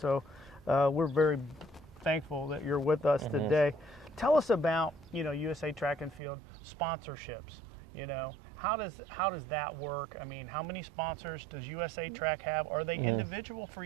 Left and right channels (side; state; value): left; drops out; at 6.2 s